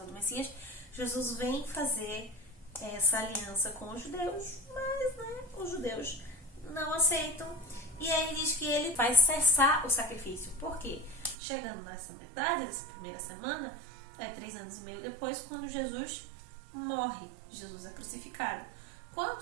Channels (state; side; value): drops out; left; at 11.4 s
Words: do Messias. Jesus vem fazer essa aliança com os judeus, mas os judeus não aceitam. E aí diz que ele vai cessar o sacrifício. Por quê? Chegando nessa metade, dessa primeira semana, 3 anos e meio depois, quando Jesus morre. Jesus é crucificado.